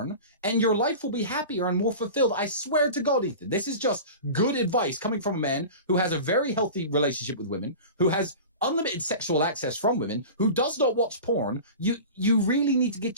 and your life will be happier and more fulfilled. I swear to God, Ethan, this is just good advice coming from a man who has a very healthy relationship with women, who has unlimited sexual access from women, who does not watch porn. You really need to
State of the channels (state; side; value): inverted; both; correlation -0.34